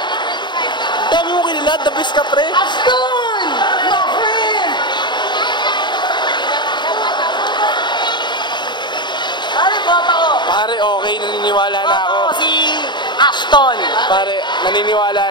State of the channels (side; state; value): right; late; 0.22 ms